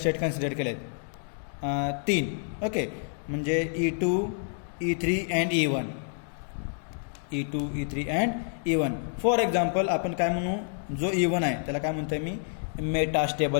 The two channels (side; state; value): right; silent; digital silence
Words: कन्सिडर केले आहेत, 3. ओके, म्हणजे E2, E3 and E1. E2, E3 and E1. For example आपण काय म्हणू, जो E1 आहे त्याला काय म्हणतोय मी,